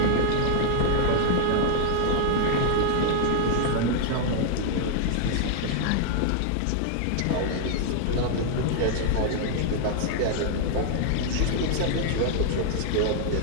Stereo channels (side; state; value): both; different; correlation 0.00